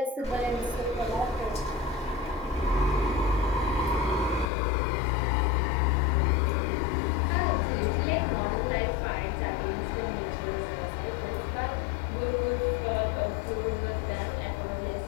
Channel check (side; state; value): right; drops out; at 4.5 s